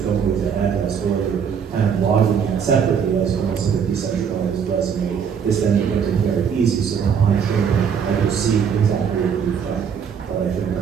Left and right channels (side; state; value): left; quieter; 7.2 dB